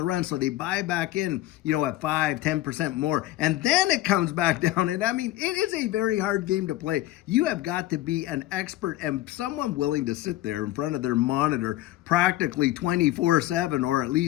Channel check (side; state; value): right; quieter; 15.8 dB